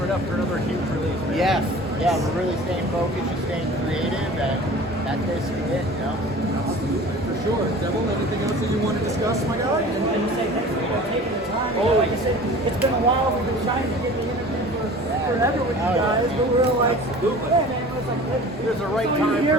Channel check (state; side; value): normal; both; correlation 0.42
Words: up for another huge release. Man. Yes. Yeah, we're really staying focused, just staying creative, and that's basically it. You know. Absolutely, for sure. Devil, anything else that you want to discuss, my guy? And you say thanks for taking the time. You know, like you said, it's been a while. We've been trying to get the interview for forever with you guys, but we're like, yeah, man, it was like, There's a right so time you're here